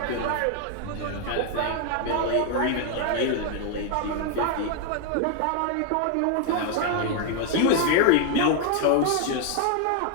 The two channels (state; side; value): different; both; correlation 0.00